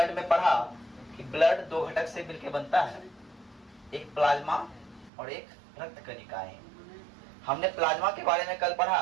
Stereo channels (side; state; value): left; drops out; at 5.1 s